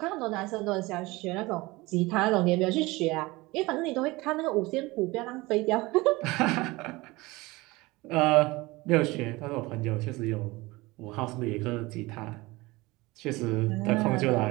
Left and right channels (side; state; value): left; quieter; 21.7 dB